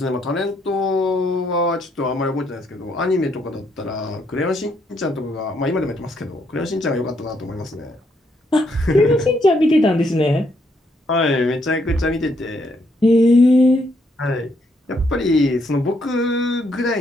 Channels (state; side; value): normal; both; correlation 0.74